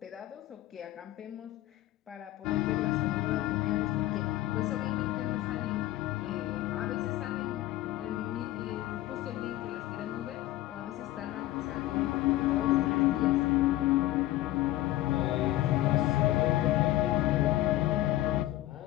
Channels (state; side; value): quieter; right; 15.5 dB